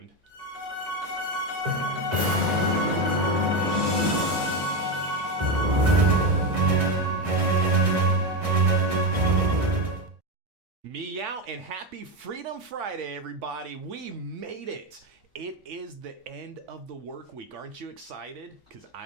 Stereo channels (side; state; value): left; late; 1.6 ms